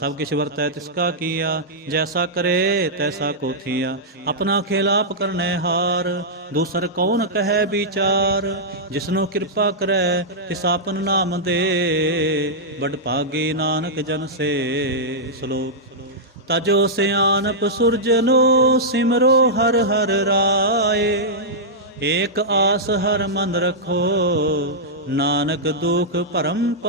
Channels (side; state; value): both; normal; correlation -0.10